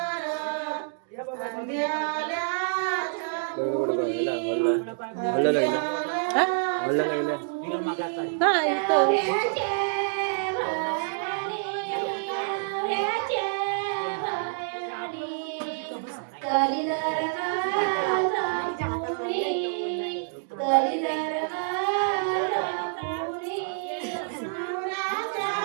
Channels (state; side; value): silent; left; digital silence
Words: हल्ला लागला. हल्ला लागला. बिगर मागायचा. हा इथं